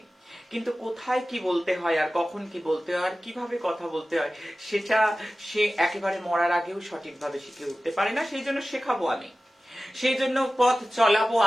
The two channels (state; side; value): normal; both; correlation 0.95